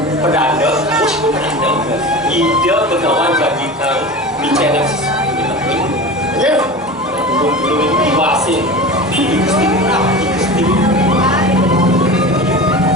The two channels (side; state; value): both; normal; correlation 0.31